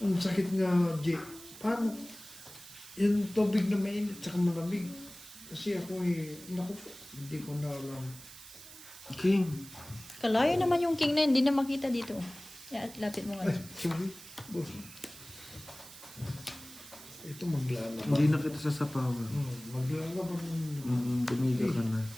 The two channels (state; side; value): noise; right; hiss, 16 dB below the sound